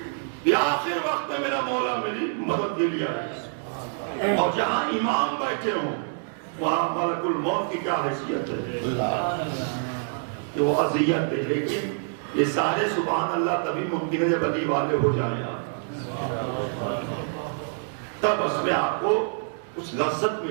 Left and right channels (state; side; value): silent; left; digital silence